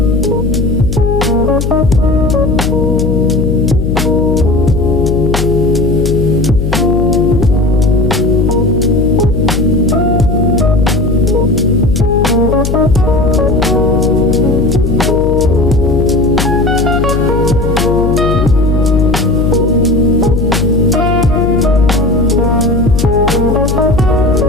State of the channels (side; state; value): left; noise; hum, 1 dB below the sound